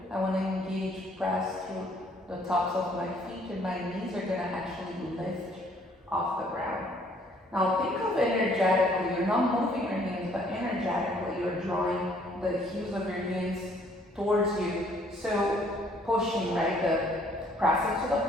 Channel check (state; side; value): normal; both; correlation 0.62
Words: I want to engage, press through the tops of my feet, and my knees are going to actually lift off the ground. Now, think of energetically. You're not moving your hands, but energetically, you're drawing the heels of your hands towards you. So, pushing, right? The press into the